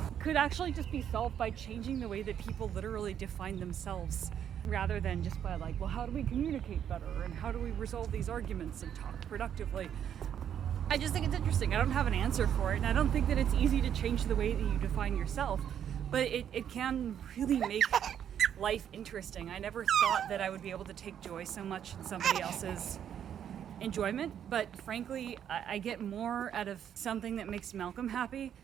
could actually just be solved by changing the way that people literally define themselves, rather than just by like, well, how do we communicate better and how do we resolve these arguments and talk productively. I just think it's interesting. I don't have an answer for it, and I don't think that it's easy to change the way that you define yourself, but it can really make life interesting. I never thought that I would be able to take joy so much in somebody else's enjoyment, but frankly, I get more out of something that makes Malcolm happy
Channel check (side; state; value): left; quieter; 9.3 dB